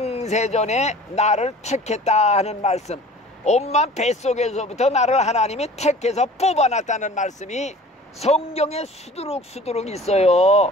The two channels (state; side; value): normal; both; correlation 0.45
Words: 나를 택했다 하는 말씀, 엄마 뱃속에서부터 나를 하나님이 택해서 뽑아놨다는 말씀이 성경에 수두룩 있어요.